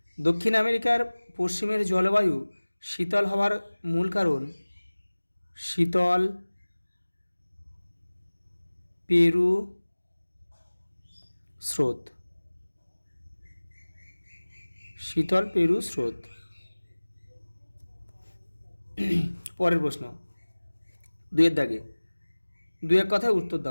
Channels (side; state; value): both; inverted; correlation -1.00